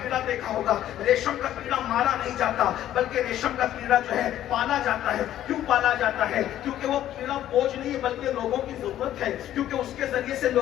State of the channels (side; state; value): right; quieter; 12.2 dB